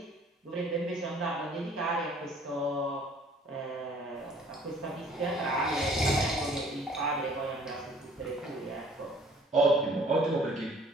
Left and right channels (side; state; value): both; normal; correlation 0.55